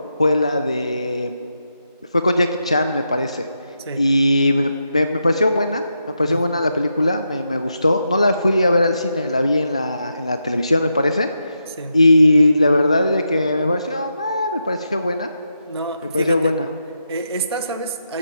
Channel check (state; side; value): inverted; both; correlation -0.85